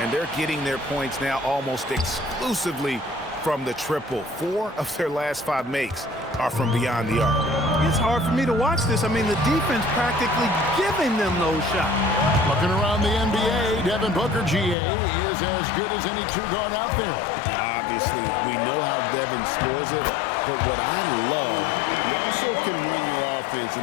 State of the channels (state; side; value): drops out; right; at 14.8 s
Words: they're getting their points now almost exclusively from the triple. 4 of their last 5 makes are from beyond the arc. It's hard for me to watch this. I mean, the defense practically giving them those shots. Looking around the NBA, Devin Booker, GA, is as good as any 2-guard out there. Obviously, we know how Devin scores it, but what I love, he also can run your offense,